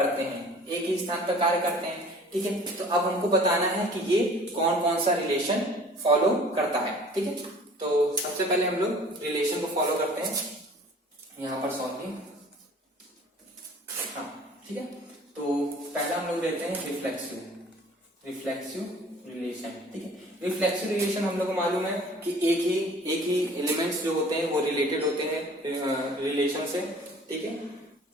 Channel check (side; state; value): both; normal; correlation 0.49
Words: हैं, एक ही स्थान पर कार्य करते हैं, ठीक है। तो अब हमको बताना है कि ये कौन कौन सा रिलेशन फॉलो करता है, ठीक है। तो सबसे पहले हम लोग रिलेशन को फॉलो करते हैं, यहाँ पर सॉल्विंग, हाँ, ठीक है। तो पहला हम लोग लेते हैं रिफ्लेक्सिव रिलेशन, ठीक है। रिफ्लेक्सिव रिलेशन हम लोग को मालूम है कि एक ही एलिमेंट्स जो होते हैं वो रिलेटेड होते हैं रिलेशन से, ठीक है।